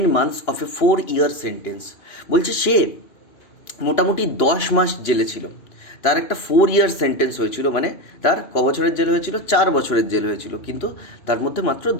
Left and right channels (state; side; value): late; right; 3.0 ms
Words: months of A 4-year sentence. বলছে সে মোটামুটি 10 মাস জেলে ছিল, তার একটা 4-year সেন্টেন্স হয়েছিল, মানে তার ক বছরের জেল হয়েছিল? 4 বছরের জেল হয়েছিল, কিন্তু তার মধ্যে মাত্র